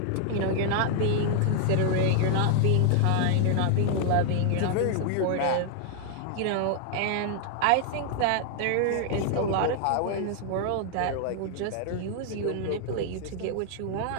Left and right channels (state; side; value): different; both; correlation 0.00